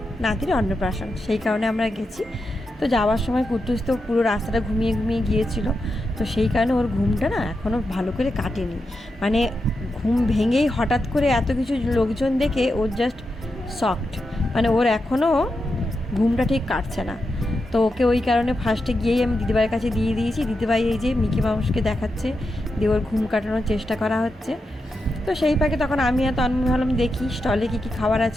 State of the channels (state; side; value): normal; both; correlation 0.87